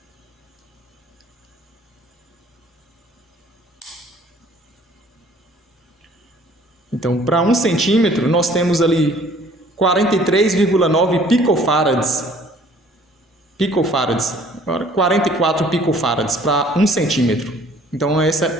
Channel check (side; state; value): both; normal; correlation 0.56